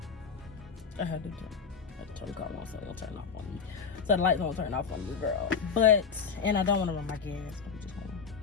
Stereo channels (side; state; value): right; quieter; 6.0 dB